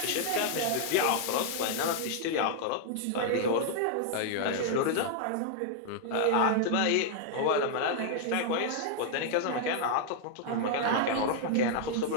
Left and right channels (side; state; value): both; different; correlation -0.01